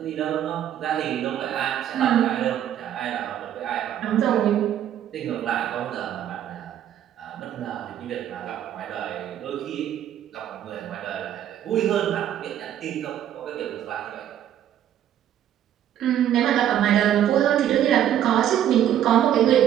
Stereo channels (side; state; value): left; quieter; 10.7 dB